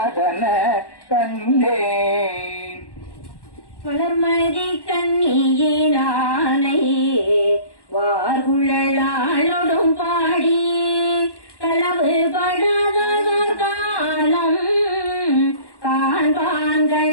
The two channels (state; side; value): late; right; 1.1 ms